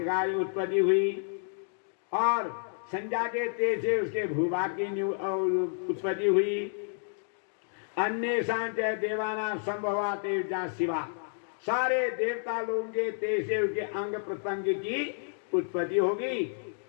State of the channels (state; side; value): silent; right; digital silence